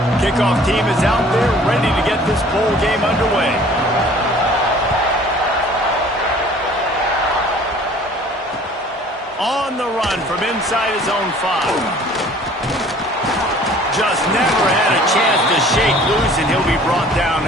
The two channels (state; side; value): normal; both; correlation 0.51